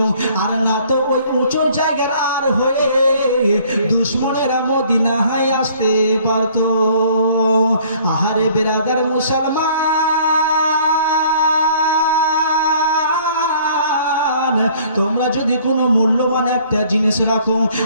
আর না তো ওই উঁচু জায়গার আর হয়ে দুশমনেরা মদিনায় আসতে পারত। আহারে বিরাদার মুসলমান, তোমরা যদি কোনো মূল্যবান একটা জিনিস রাখো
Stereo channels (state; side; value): inverted; both; correlation -0.57